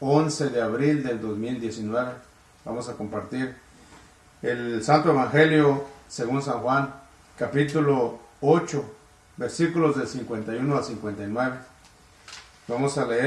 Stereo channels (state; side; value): identical; both; correlation 1.00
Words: de abril del 2019, vamos a compartir el Santo Evangelio según San Juan, capítulo 8, versículos del 51 al 59. Vamos a